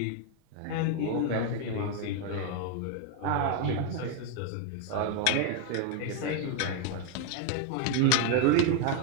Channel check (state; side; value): different; both; correlation 0.01